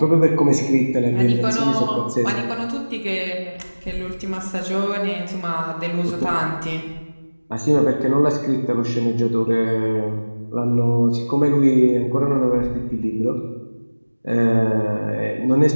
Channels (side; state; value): both; inverted; correlation -1.00